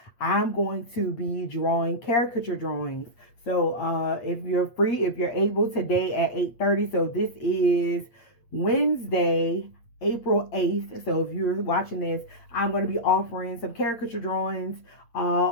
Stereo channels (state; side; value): late; right; 8.5 ms